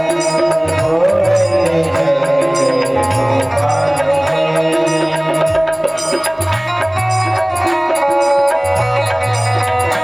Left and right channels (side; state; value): left; noise; hum, 28 dB below the sound